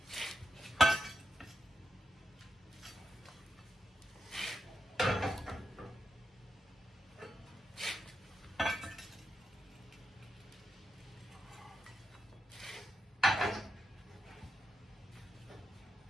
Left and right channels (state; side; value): normal; both; correlation 0.88